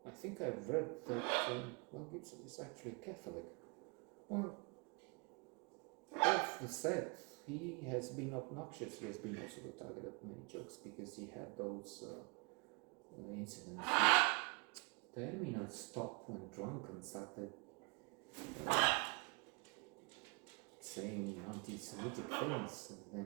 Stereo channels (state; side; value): quieter; left; 31.3 dB